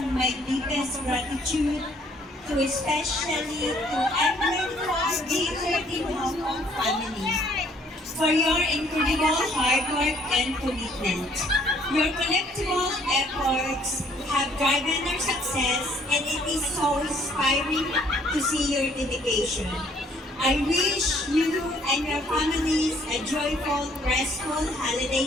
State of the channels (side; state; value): both; normal; correlation 0.62